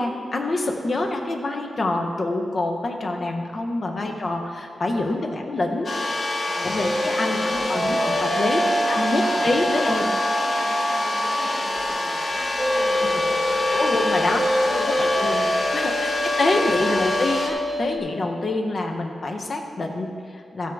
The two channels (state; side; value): normal; both; correlation 0.91